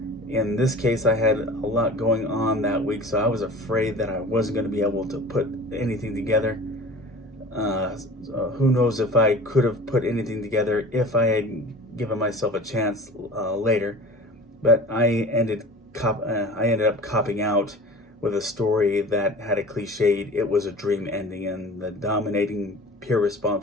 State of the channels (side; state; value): both; normal; correlation 0.40